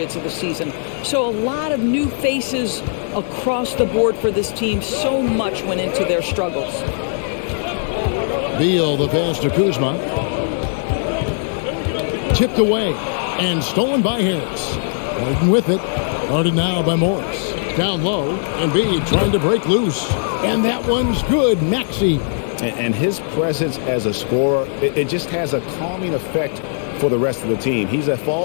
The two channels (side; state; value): right; silent; 66 dB below the other